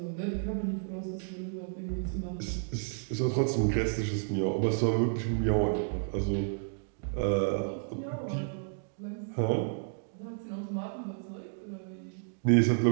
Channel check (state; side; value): silent; left; digital silence